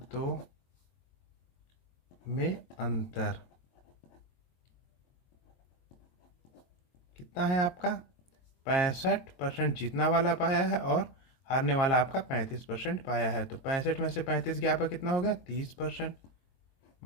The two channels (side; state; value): right; late; 22 ms